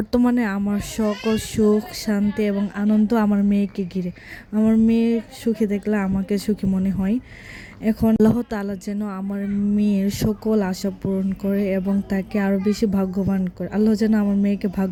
আমার সকল সুখ শান্তি এবং আনন্দ আমার মেয়েকে ঘিরে। আমার মেয়ে সুখী দেখলে আমাকে সুখী মনে হয়। এখন আল্লাহ তাআলা যেন আমার মেয়ের সকল আশা পূরণ করে এবং তাকে আরও বেশি ভাগ্যবান করে। আল্লাহ যেন আমার মেয়েকে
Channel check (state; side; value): identical; both; correlation 1.00